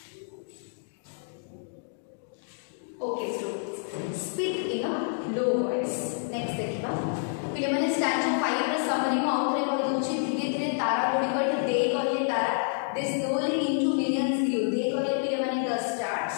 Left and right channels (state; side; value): silent; right; digital silence